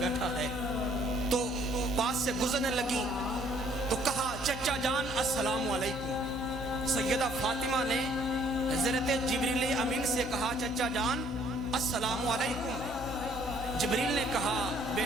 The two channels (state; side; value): noise; left; hum, 11 dB below the sound